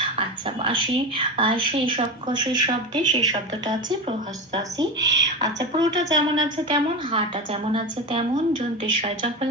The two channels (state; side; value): normal; both; correlation 0.22